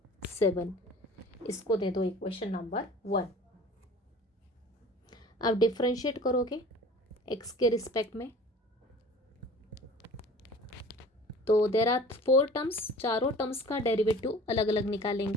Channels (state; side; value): normal; both; correlation 0.44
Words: 7। इसको दे दो इक्वेशन नंबर 1। अब डिफ्रेंशिएट करोगे, एक्स के रिस्पेक्ट में। तो देयर आर 4 टर्म्स, चारों टर्म्स का डेरिवेटिव अलग अलग